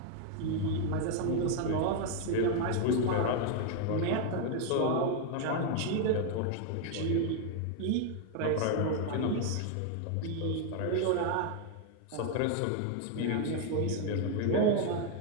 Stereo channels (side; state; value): both; different; correlation 0.00